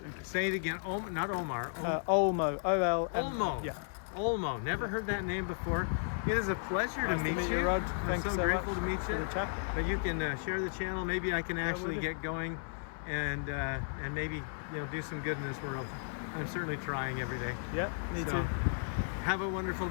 say it again. Not Omar. Olmo. Olmo. Yeah. Olmo. Never heard that name before. It is a pleasure to meet you. Rod. I'm so grateful to meet you. But you can share the channel. Maybe I can actually get going, and maybe do some good in this world. I'm certainly trying every day. Yeah, me too. Have a wonderful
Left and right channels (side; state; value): right; silent; 55 dB below the other